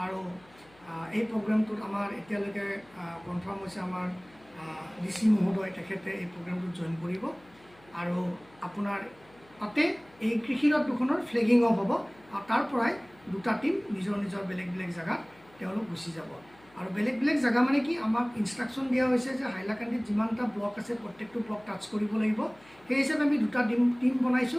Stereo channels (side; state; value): left; noise; hum, 28 dB below the sound